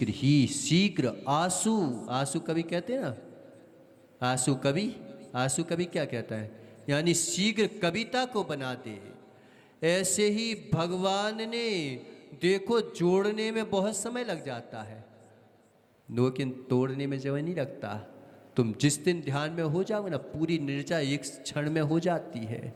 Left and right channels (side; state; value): both; identical; correlation 1.00